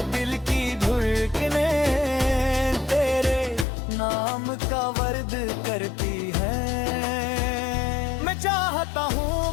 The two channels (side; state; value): right; drops out; at 3.7 s